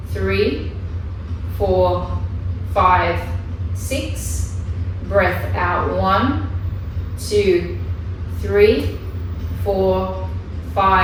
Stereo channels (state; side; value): identical; both; correlation 1.00